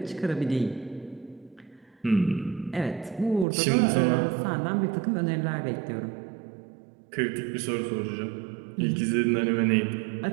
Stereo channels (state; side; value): drops out; left; at 3.5 s